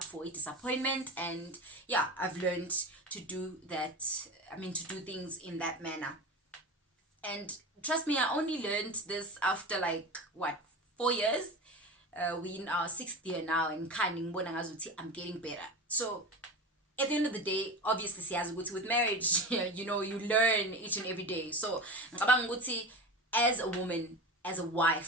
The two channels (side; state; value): both; normal; correlation 0.27